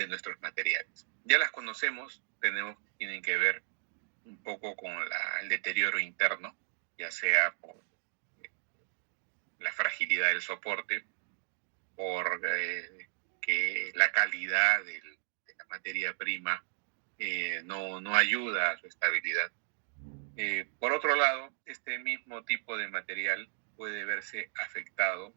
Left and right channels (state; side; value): silent; left; 55 dB below the other